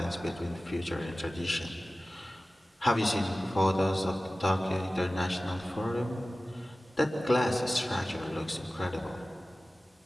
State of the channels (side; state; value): both; normal; correlation 0.96